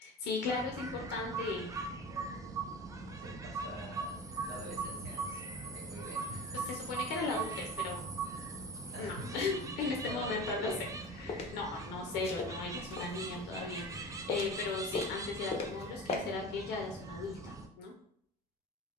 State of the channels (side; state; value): both; normal; correlation 0.32